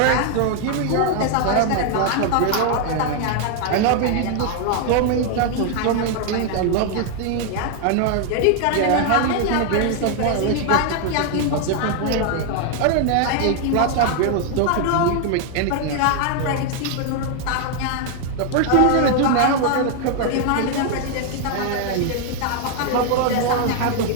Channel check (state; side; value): different; both; correlation 0.00